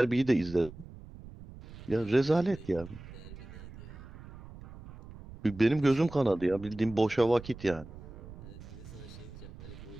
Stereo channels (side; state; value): right; noise; rumble, 15 dB below the sound